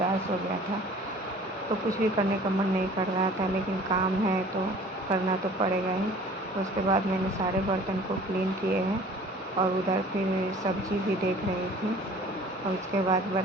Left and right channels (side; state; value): both; normal; correlation 0.48